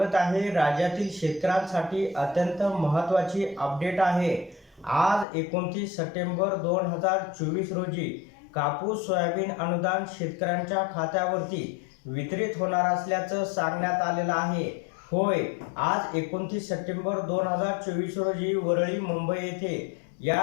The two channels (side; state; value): right; drops out; at 5.2 s